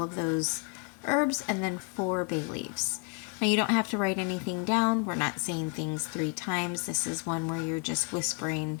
of those herbs and then 4 bay leaves. Now you don't have to write anything down. We're not saying things 3 times. This is one where you're just whispering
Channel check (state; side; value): quieter; right; 32.6 dB